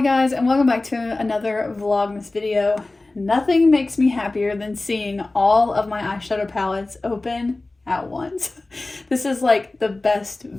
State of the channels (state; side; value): quieter; right; 3.1 dB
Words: guys, and welcome back to another vlogmas video. Nothing makes me happier than seeing all of my eyeshadow palettes open at once. This is like the best